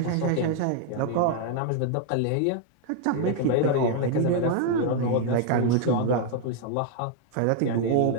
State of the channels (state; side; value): different; both; correlation 0.00